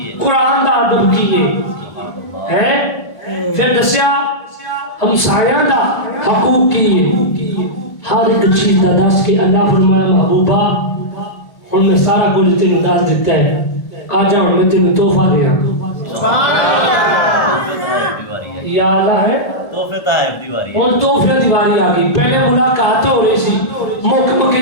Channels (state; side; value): late; right; 1.5 ms